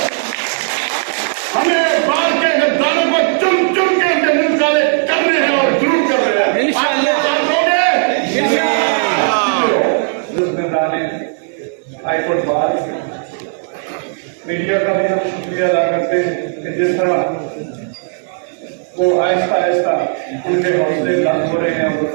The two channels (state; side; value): silent; left; digital silence